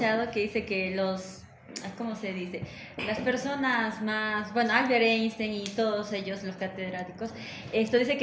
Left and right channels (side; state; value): both; identical; correlation 1.00